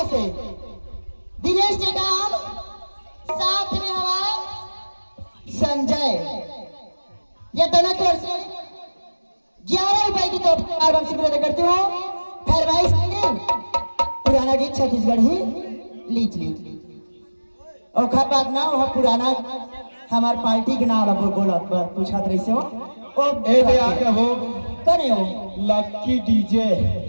से दिनेश टेकाम, साथ में हवा संजय। ये दोनों की ओर से 11 रुपए की तोहफा वापसी प्रदान करती हूँ। खैर भाई पुराना गीत छत्तीसगढ़ ही लीच ली और खा बात ना वह पुराना हमार पार्टी के नाम बोला पूछा रही से हो ओ ए आके हो करे हो लक्की डीजे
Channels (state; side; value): inverted; both; correlation -1.00